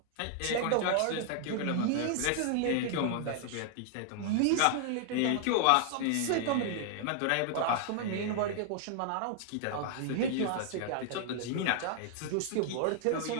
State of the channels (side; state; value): both; different; correlation 0.00